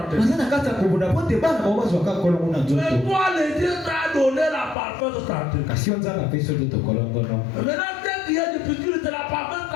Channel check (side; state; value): right; drops out; at 4.8 s